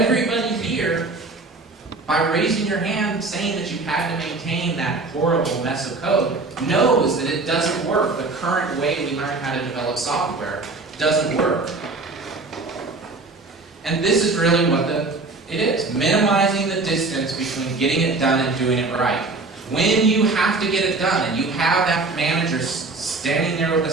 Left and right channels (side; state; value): left; quieter; 3.6 dB